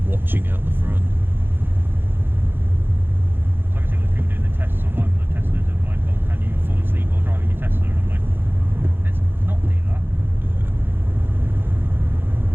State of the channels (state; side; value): late; left; 0.10 ms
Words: watching out the front? So I can see all the people doing the tests online with the Teslas of can you fall asleep while driving your Tesla? And I'm like, let's not do that. Yeah.